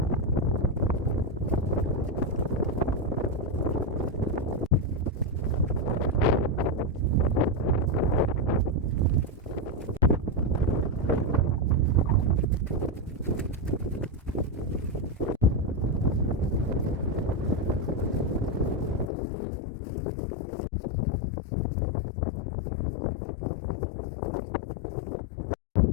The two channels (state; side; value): drops out; right; at 19.1 s